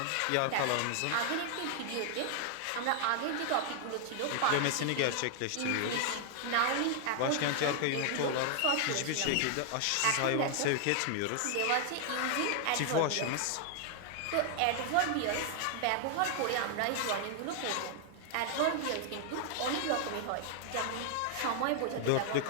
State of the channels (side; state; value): both; different; correlation 0.00